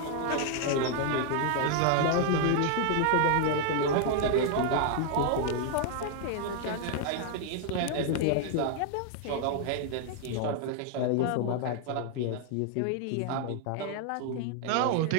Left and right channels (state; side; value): different; both; correlation 0.00